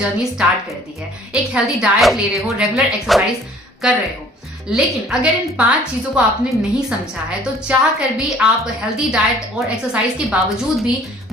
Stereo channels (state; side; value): normal; both; correlation 0.54